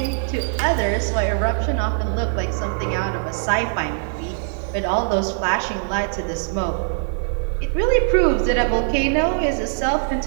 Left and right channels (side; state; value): left; silent; digital silence